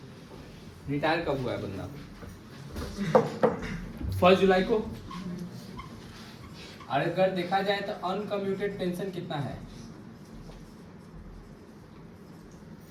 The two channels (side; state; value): both; identical; correlation 1.00